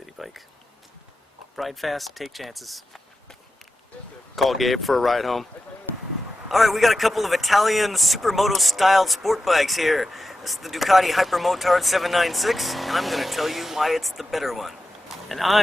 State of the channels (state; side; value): normal; both; correlation 0.90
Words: bike. Ride fast, take chances. Call Gabe for a ride home. Alright, we got a couple of Italian supermoto styled sport bikes here. This is the Ducati Hypermotard 796, and I'm going to tell you why it's the better one. And